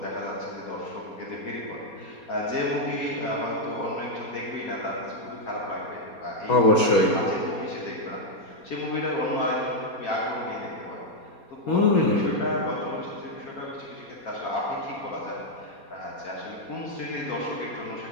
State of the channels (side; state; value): right; late; 4.2 ms